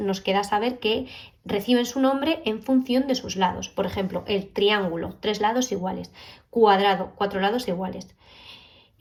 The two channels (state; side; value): identical; both; correlation 1.00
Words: queda saber que reciben su nombre en función de sus lados. Por ejemplo, el triángulo, 3 lados iguales; cuadrado, 4 lados iguales;